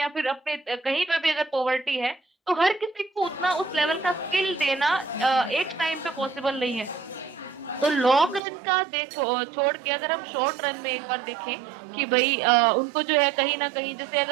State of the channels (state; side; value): drops out; left; at 8.4 s